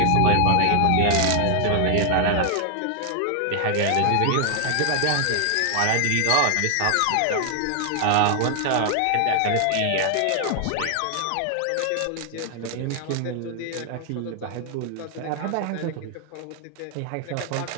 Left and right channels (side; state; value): both; different; correlation 0.00